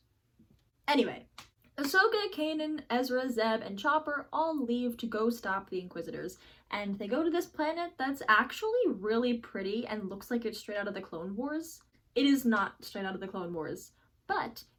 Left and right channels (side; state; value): both; identical; correlation 1.00